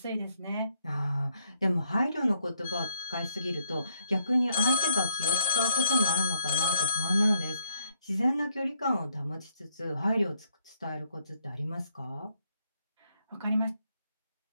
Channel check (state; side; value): inverted; both; correlation -0.73